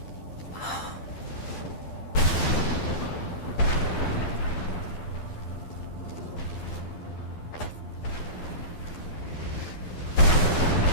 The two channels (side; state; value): right; late; 12 ms